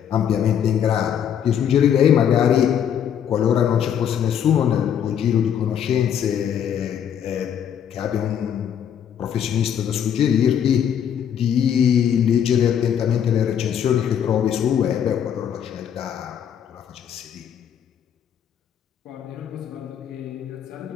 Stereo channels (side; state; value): right; quieter; 8.9 dB